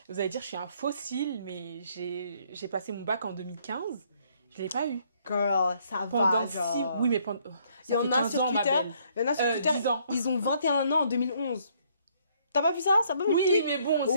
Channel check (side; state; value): both; inverted; correlation -0.66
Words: Vous allez dire, je suis un fossile, mais j'ai passé mon bac en 2015. Je l'ai pas eu. Girl, ça Pendant va, genre. Oui, mais pendant... Il y ça en fait a 15 sur ans, ma Twitter. belle. Il y en a sur Twitter. 10 ans. Ils ont 21 ans en 2011. T'as pas vu ça? Ça peut me Oui, tweet. mais bon,